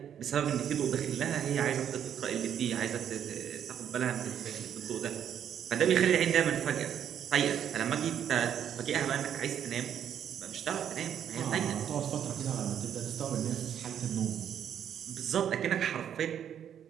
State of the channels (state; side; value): quieter; left; 9.3 dB